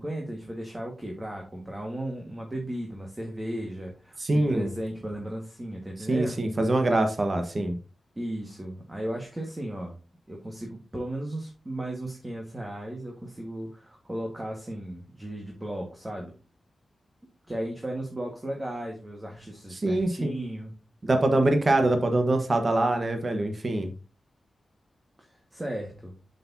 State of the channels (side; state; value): both; normal; correlation 0.94